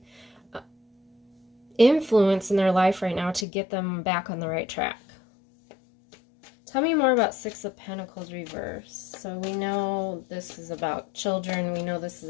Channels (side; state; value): right; drops out; at 3.5 s